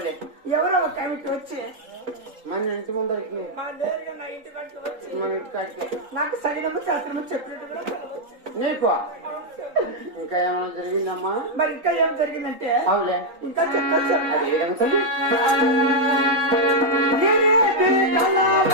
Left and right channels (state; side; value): late; left; 3.8 ms